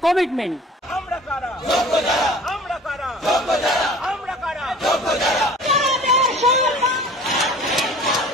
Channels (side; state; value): both; normal; correlation 0.46